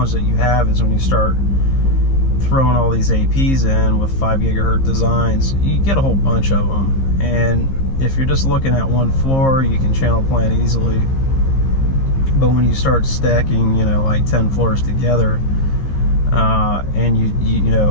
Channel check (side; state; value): right; late; 15 ms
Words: that you have is when you start throwing all these APs in with 5 gigahertz designs, you get a whole bunch of them. And if you're just looking at one floor, you can channel plan easily. But when you start stacking, you know, like 10 floors together, and you